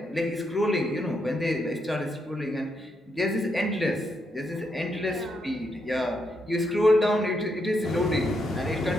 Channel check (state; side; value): normal; both; correlation 0.80